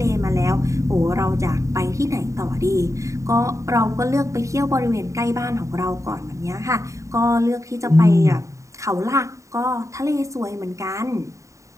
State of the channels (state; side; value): late; left; 0.15 ms